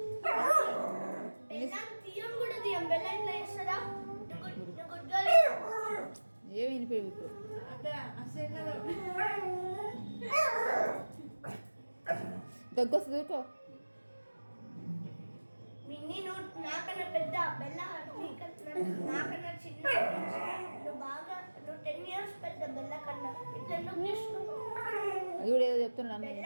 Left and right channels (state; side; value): inverted; both; correlation -1.00